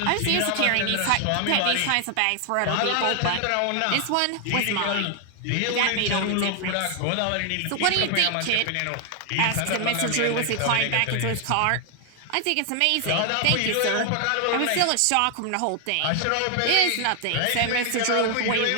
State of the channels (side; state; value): both; different; correlation 0.00